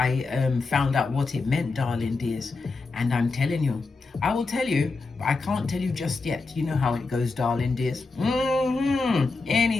out what it meant, darling dears, and I'm telling you, I will tell you, but I can't tell you just yet. You know how it goes, darling dears.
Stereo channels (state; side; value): quieter; right; 3.9 dB